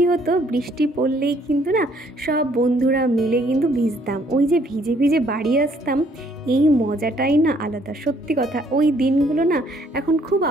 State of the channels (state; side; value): normal; both; correlation 0.64